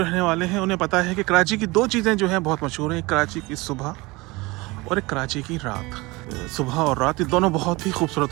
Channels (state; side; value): quieter; left; 23.1 dB